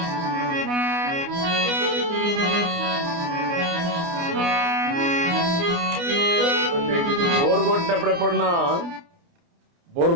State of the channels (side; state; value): left; late; 29 ms